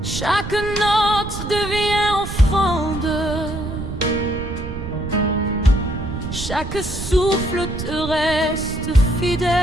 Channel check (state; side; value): noise; right; rumble, 8 dB below the sound